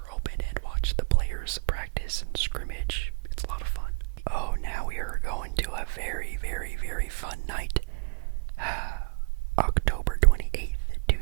open, and watch the players practice and scrimmage. It's a lot of fun. Oh, now we are going to a very, very, very fun night. October 28th,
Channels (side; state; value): left; quieter; 35.3 dB